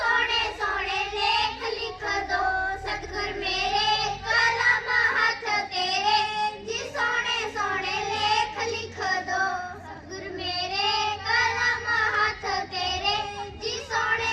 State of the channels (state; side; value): identical; both; correlation 1.00